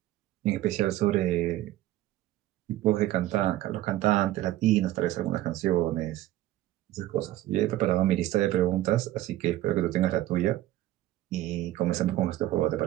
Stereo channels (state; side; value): quieter; left; 14.9 dB